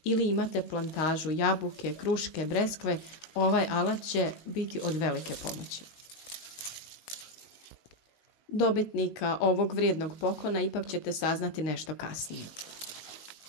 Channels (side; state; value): right; late; 19 ms